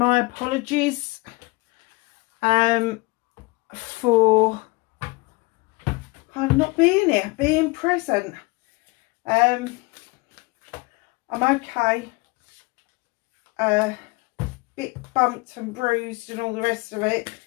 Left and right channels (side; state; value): right; quieter; 25.2 dB